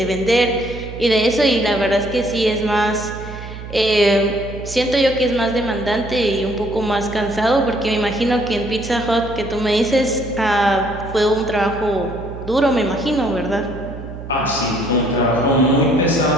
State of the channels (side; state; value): right; noise; hum, 11 dB below the sound